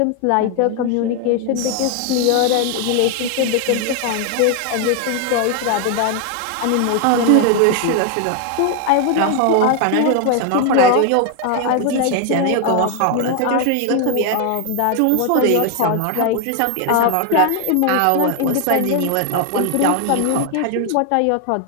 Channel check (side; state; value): both; different; correlation 0.00